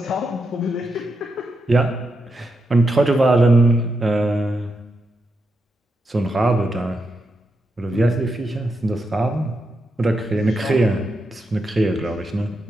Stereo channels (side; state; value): both; normal; correlation 0.85